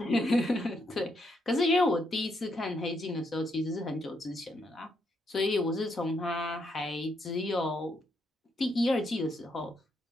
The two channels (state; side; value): normal; both; correlation 0.77